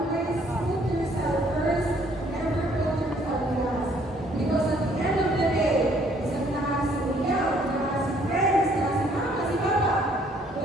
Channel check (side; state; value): both; normal; correlation 0.63